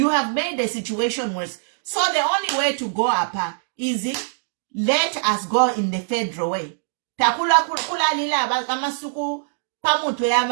have made the situation worse. So the only way to go up is let us go in the federal way. If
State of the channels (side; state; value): left; silent; digital silence